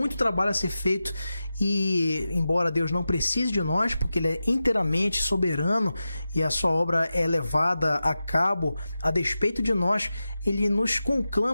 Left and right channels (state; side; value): inverted; both; correlation -0.93